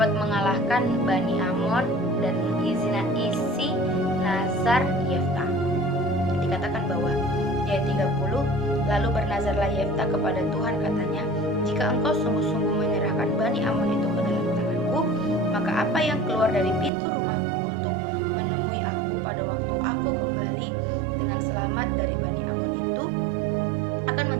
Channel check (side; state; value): left; drops out; at 16.9 s